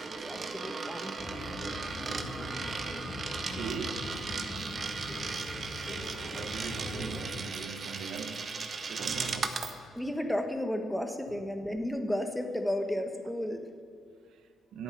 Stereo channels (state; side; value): normal; both; correlation 0.85